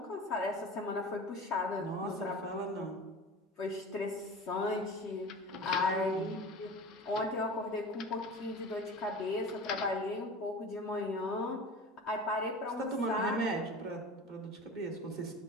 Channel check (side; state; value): both; normal; correlation 0.36